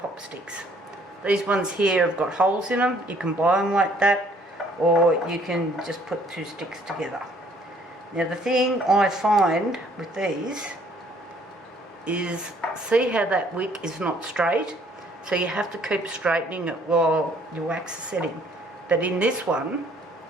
sticks. These ones here have got holes in them. You can buy them like that, or you can just put two sticks together. Now the thing I find with these is, see how that wick is not straight? So you have to keep straightening it while your wax is setting. But in this one,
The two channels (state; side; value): normal; both; correlation 0.61